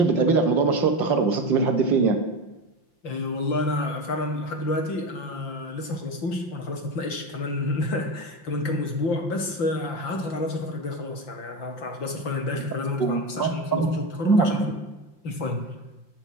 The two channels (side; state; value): right; late; 5.9 ms